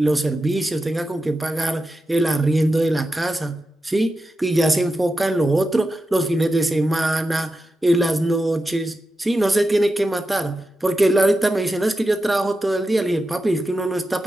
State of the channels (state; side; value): normal; both; correlation 0.90